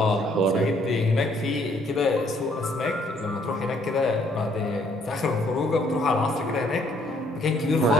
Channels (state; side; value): normal; both; correlation 0.66